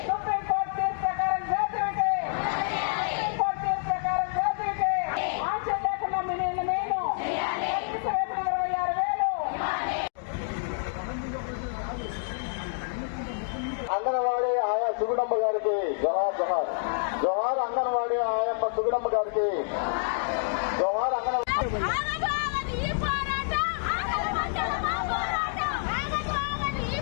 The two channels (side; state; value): right; silent; digital silence